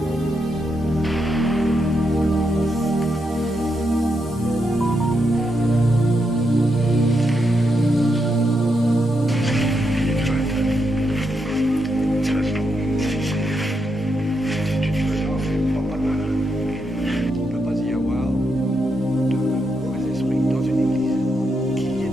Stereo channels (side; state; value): both; normal; correlation 0.82